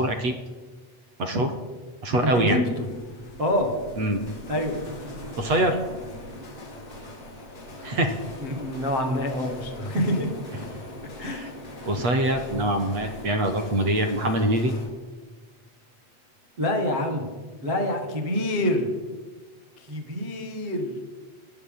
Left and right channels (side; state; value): left; late; 8.3 ms